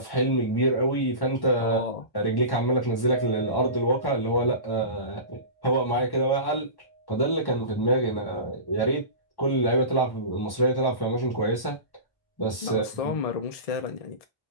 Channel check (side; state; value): right; late; 1.1 ms